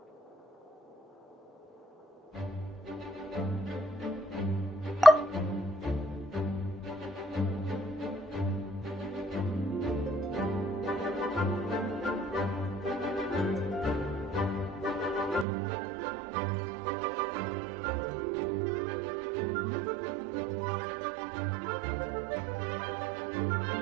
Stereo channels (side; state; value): left; drops out; at 15.5 s